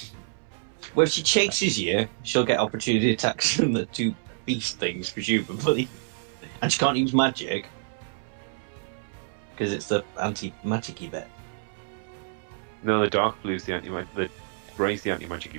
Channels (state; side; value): silent; left; 60 dB below the other